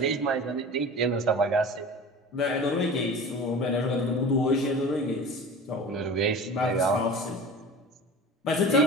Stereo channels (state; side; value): normal; both; correlation 0.36